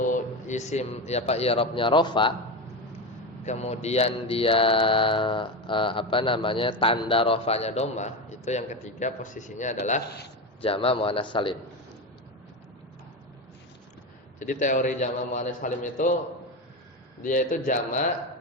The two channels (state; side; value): normal; both; correlation 0.18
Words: isim ya Pak i'rabnya rafa, kemudian dia tanda rafanya dhammah, itu yang ketiga posisinya adalah jamak muannats salim. Jadi teori jamak muannats salim itu dia itu jamak